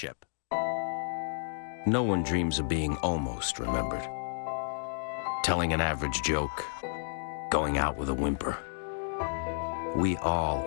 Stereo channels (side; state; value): right; silent; digital silence